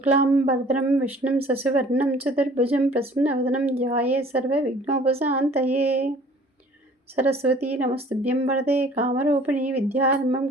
విష్ణుం శశివర్ణం చతుర్భుజం ప్రసన్నవదనం ధ్యాయే సర్వవిఘ్నోపశాంతయే. సరస్వతీ నమస్తుభ్యం వరదే కామరూపిణి విద్యారంభం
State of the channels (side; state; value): both; normal; correlation 0.52